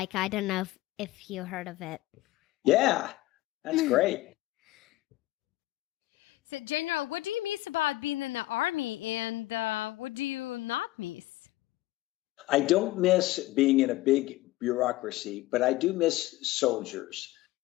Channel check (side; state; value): right; quieter; 17.6 dB